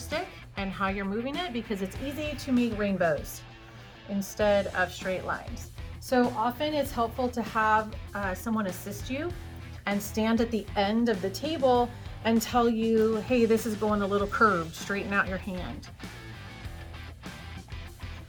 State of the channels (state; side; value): identical; both; correlation 1.00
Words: and how you're moving it, because it's easy to make rainbows instead of straight lines. So often it's helpful to have someone assist you and stand at the end of the table and tell you, hey, this is going a little curved, straighten out your hand.